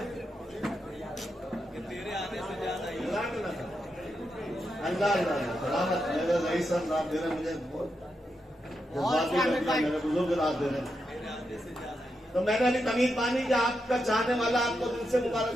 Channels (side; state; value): both; normal; correlation 0.85